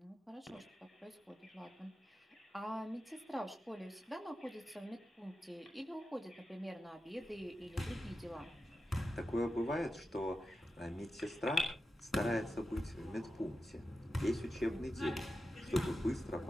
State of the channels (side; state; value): both; normal; correlation 0.91